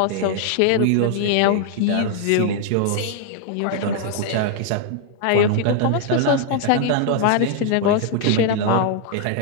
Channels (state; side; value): different; both; correlation 0.00